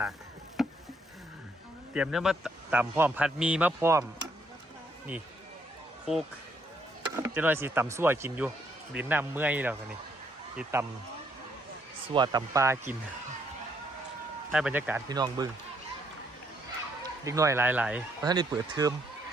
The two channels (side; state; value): both; normal; correlation 0.71